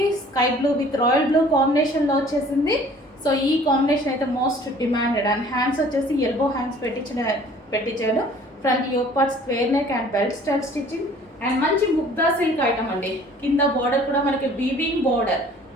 sky blue with royal blue కాంబినేషన్లో వచ్చేసింది. సో ఈ కాంబినేషన్ అయితే మోస్ట్ డిమాండెడ్. అండ్ హ్యాండ్స్ వచ్చేసి ఎల్బో హ్యాండ్స్ పెట్టించాడు. Front yoke part square neck and belt style stitching and మంచి ముగ్గా సిల్క్ ఐటమ్ అండి. కింద బార్డర్ కూడా మనకి వీవింగ్ బార్డర్,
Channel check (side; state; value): both; normal; correlation 0.52